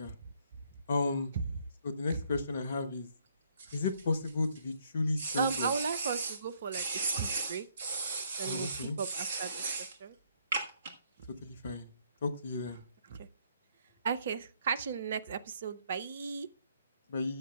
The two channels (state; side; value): inverted; both; correlation -0.69